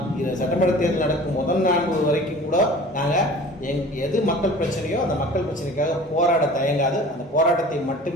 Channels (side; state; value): both; normal; correlation 0.43